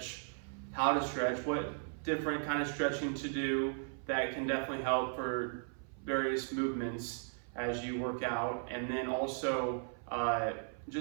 how to stretch, what different kind of stretching to do that can definitely help for various movements as you work out, and then also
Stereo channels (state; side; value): silent; left; 53 dB below the other